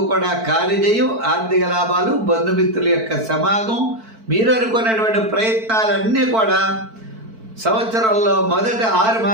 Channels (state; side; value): late; left; 4.5 ms